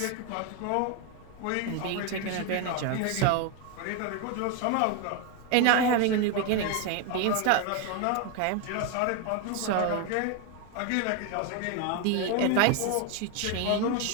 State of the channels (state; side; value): different; both; correlation 0.01